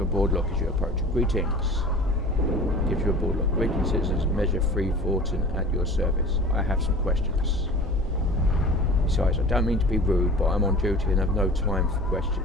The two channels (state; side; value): normal; both; correlation 0.41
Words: a board lock as you approach. Greetings. Gives you a board lock. Greetings, citizens. Measure 3 Vorten at your service. I have some questions. Besides, I don't mean to be rude, but I'm on duty and have no time for